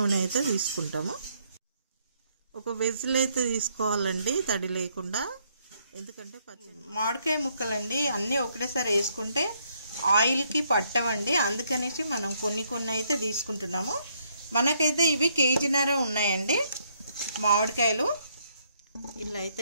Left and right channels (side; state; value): both; inverted; correlation -0.71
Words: అయితే తీసుకుంటాము. ఒక వెజ్లు అయితే తీసుకోవాలండి, తడి లేకుండా. ఎందుకంటే మామిడికాయ ముక్కలండి అన్నీ ఒకటేసారి వేసుకుంటే ఆయిల్కి పట్టవండి. అందుకనేసి మనం కొన్ని అయితే తీసుకుంటున్నాము. మనకైతే ఇవి 1.5 కేజీ ఉన్నాయండి మామిడికాయలు. ఇలా